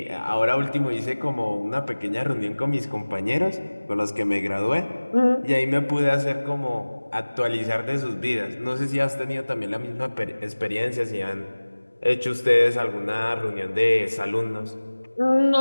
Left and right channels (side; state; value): both; inverted; correlation -1.00